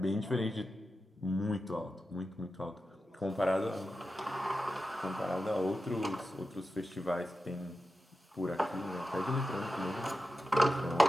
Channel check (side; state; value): both; normal; correlation 0.91